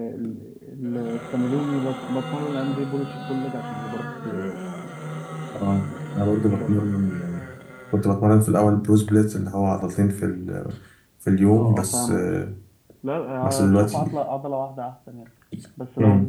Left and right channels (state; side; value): identical; both; correlation 1.00